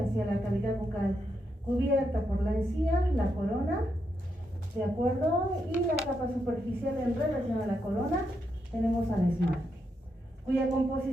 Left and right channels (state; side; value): normal; both; correlation 0.82